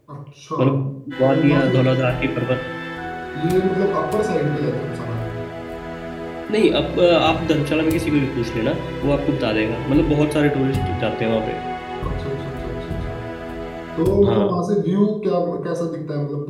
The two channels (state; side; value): identical; both; correlation 1.00